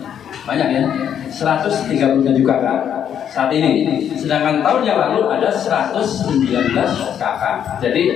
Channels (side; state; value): right; quieter; 9.1 dB